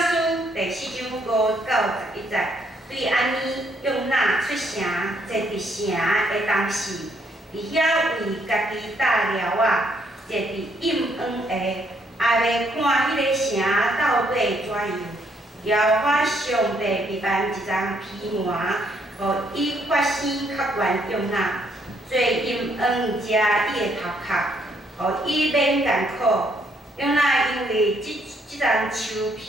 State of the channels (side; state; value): both; normal; correlation 0.71